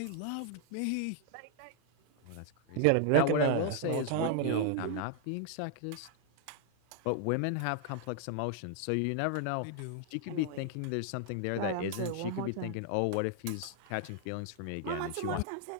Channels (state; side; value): different; both; correlation 0.00